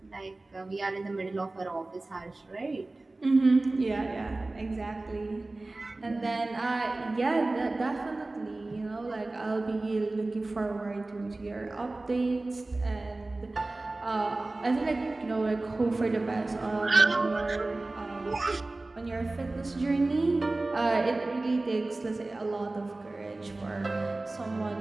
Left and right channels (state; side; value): quieter; left; 3.0 dB